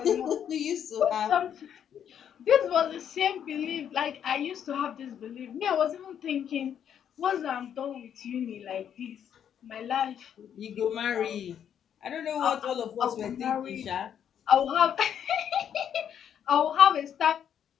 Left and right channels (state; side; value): quieter; right; 9.0 dB